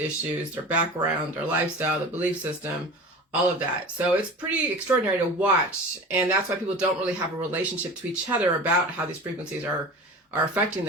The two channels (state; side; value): normal; both; correlation 0.35